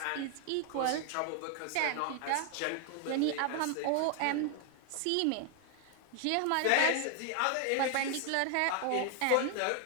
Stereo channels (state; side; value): different; both; correlation 0.00